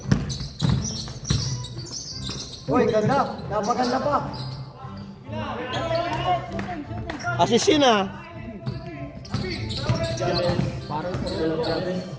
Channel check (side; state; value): both; identical; correlation 1.00